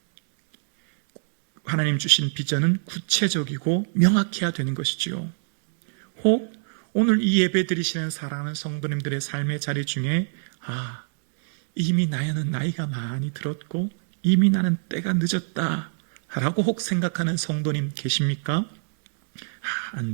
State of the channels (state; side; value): silent; left; 62 dB below the other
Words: 하나님 주신 비전은 구체적이고 명확해야 되는 것이지요. 혹 오늘 이 예배 드리시는 사랑하는 성도님들의 삶의 자리 중에 이미 나는 나이가 많이 들었고 이미 나는 때가 늦었다 라고 혹 생각하는 성도님 계십니까?